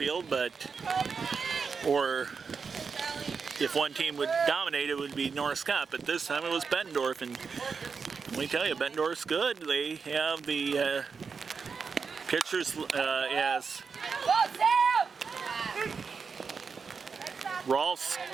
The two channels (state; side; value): quieter; left; 5.4 dB